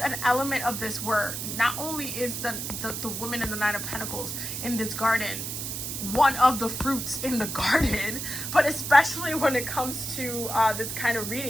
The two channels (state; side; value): noise; right; hiss, 5 dB below the sound